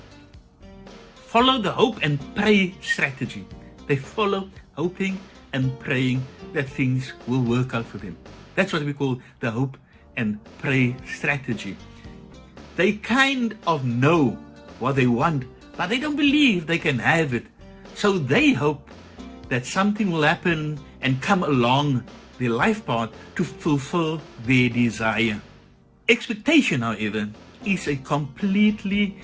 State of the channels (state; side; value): identical; both; correlation 1.00